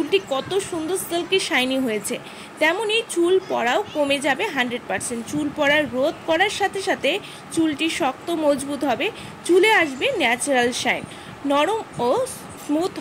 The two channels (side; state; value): both; identical; correlation 1.00